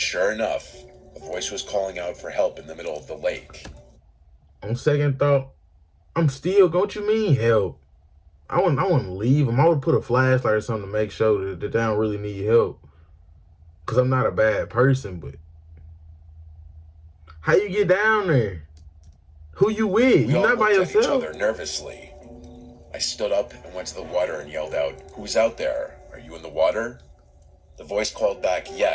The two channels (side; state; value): both; identical; correlation 1.00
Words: enough, a voice was calling out for help in the middle of the lake. On second thought, I'm still, what you mean help? I wouldn't leave them. I would put a flashlight or something to make sure that they don't really need help. Because I'm not a bad person, but how you get down there? Who you with? We You're all not by looked at each yourself. other nervously. I stood up and went to the water and yelled out, "Who's out there? Are you in the water?" The voice called back,